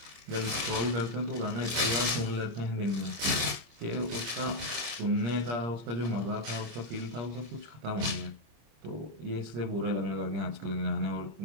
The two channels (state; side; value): late; left; 26 ms